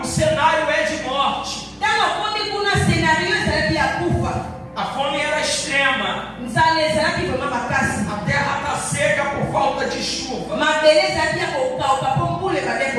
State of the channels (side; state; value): both; identical; correlation 1.00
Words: cenário é de morte. Ntango akomi kuna senario ezalaki ya kufa. A fome era extrema. Nzala ezalaki vraimen makasi. A terra está seca por falta de chuva. Mabele ezalaki ya kokawuka mpo mbula ebandaki